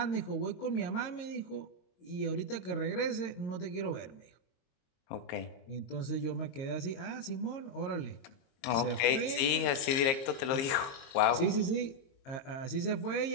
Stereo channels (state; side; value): late; right; 22 ms